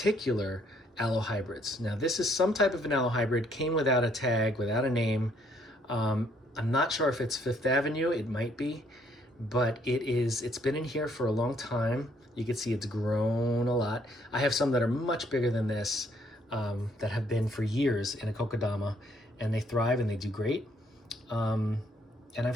aloe hybrids. Now this is some type of an aloe hybrid, came without a tag, without a name. I'm not sure if it's Fifth Avenue, it might be, but it's been in here for a long time. You can see it's grown a lot. I have some that are much bigger than this, that have been for years in a kokedama, and they thrive and they do great. And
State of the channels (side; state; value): both; normal; correlation 0.67